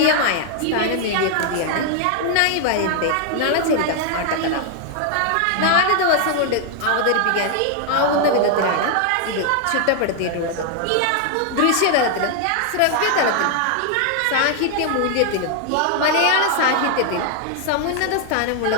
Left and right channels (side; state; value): both; different; correlation 0.00